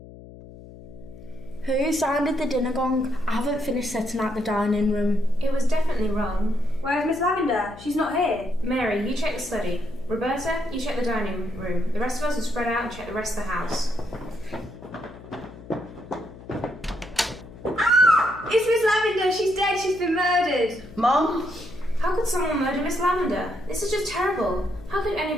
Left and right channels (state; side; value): noise; left; hum, 17 dB below the sound